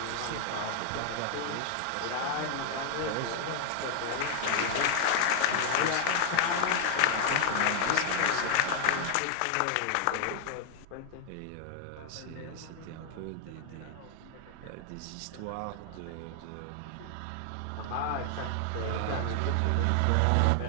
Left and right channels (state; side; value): different; both; correlation 0.00